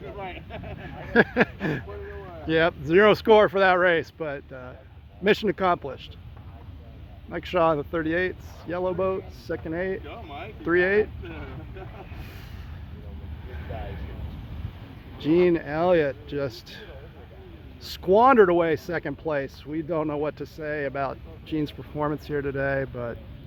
Yep, 0 score for that race, but mission accomplished. Mike Shaw in the 38s, yellow boat, second 8, 3-8. Gene Elliott just squandered away second place. We don't know what to say about Gene's performance here today, but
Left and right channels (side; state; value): both; identical; correlation 1.00